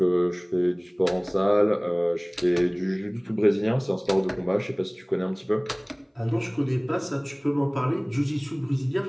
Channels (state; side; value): identical; both; correlation 1.00